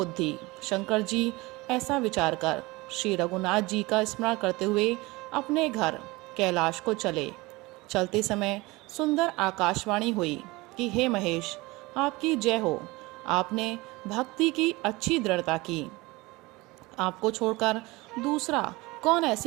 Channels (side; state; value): left; quieter; 22.4 dB